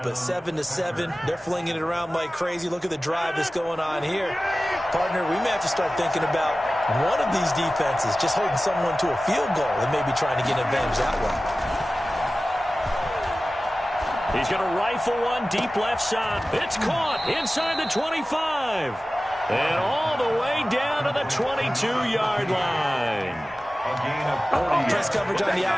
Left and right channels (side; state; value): both; normal; correlation 0.96